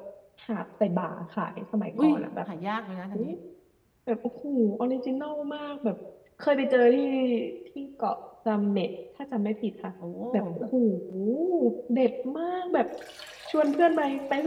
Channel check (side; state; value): both; identical; correlation 1.00